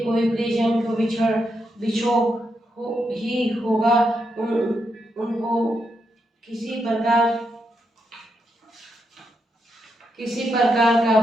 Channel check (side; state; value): both; normal; correlation 0.82